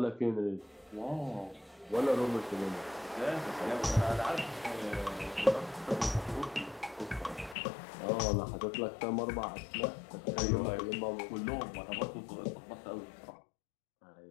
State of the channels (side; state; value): right; drops out; at 7.6 s